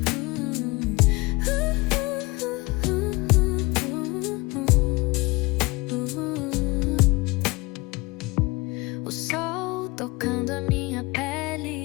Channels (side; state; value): right; quieter; 23.7 dB